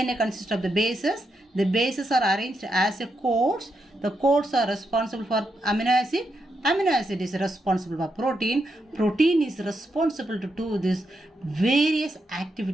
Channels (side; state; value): both; normal; correlation 0.83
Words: consists of the bases. The bases are arranged as a codes. The codes are responsible for amino acid. Amino acid is responsible for protein. Protein is responsible to do these various